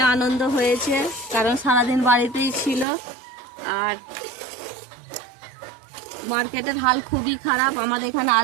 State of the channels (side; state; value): left; drops out; at 2.9 s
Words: আনন্দ হয়েছে, কারণ সারাদিন বাড়িতেই ছিল। আর মার্কেটের হাল খুবই খারাপ, আমাদের এখানে